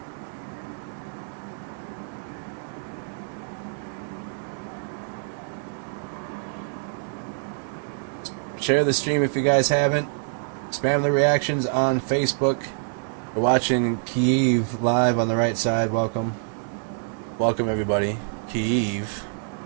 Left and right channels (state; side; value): silent; left; digital silence